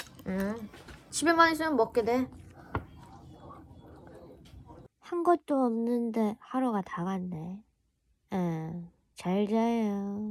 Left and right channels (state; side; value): identical; both; correlation 1.00